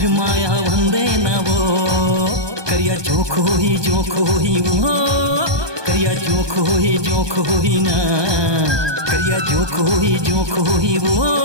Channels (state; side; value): late; left; 1.2 ms